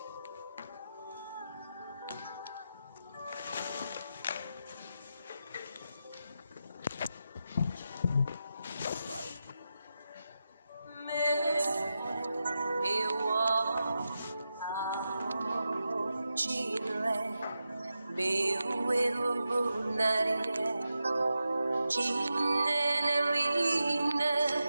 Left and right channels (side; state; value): both; inverted; correlation -0.89